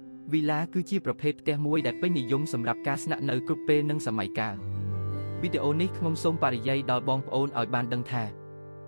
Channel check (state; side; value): inverted; both; correlation -1.00